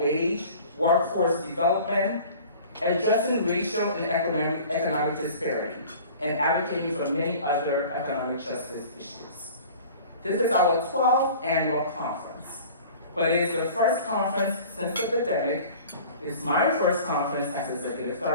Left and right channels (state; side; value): inverted; both; correlation -0.44